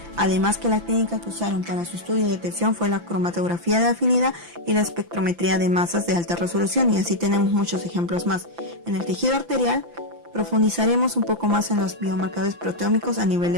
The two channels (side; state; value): left; late; 5.9 ms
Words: Además que la técnica que usaron para su estudio y detección fue la cromatografía de afinidad y la espectrometría de masas de alta resolución, y así tenemos muchos ejemplos más. En el tejido arterial profundizaremos un poco más en los biomarcadores proteómicos a nivel